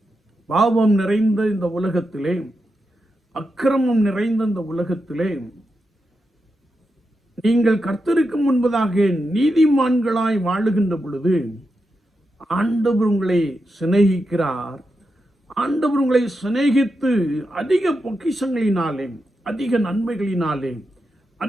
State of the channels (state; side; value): normal; both; correlation 0.87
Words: பாவம் நிறைந்த இந்த உலகத்திலே, அக்கிரமம் நிறைந்த இந்த உலகத்திலே நீங்கள் கர்த்தருக்கு முன்பதாக நீதிமான்களாய் வாழுகின்ற பொழுது ஆண்டவர் உங்களை சிநேகிக்கிறார். ஆண்டவர் உங்களை சிநேகித்து அதிக பொக்கிஷங்களினாலே, அதிக நன்மைகளினாலே,